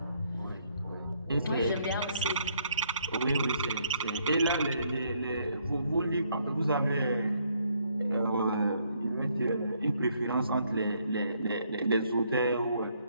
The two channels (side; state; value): both; inverted; correlation -0.70